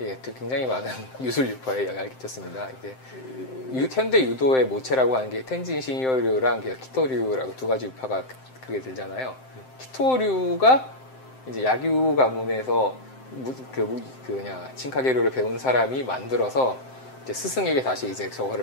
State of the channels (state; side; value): late; right; 7.7 ms